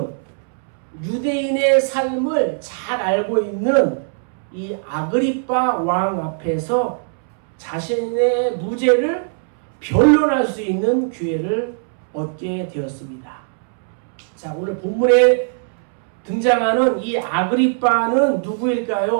유대인의 삶을 잘 알고 있는 이 아그리빠 왕 앞에서 자신의 무죄를 변론할 수 있는 기회를 얻게 되었습니다. 자, 오늘 본문에 등장하는 이 아그리빠는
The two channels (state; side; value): silent; left; 66 dB below the other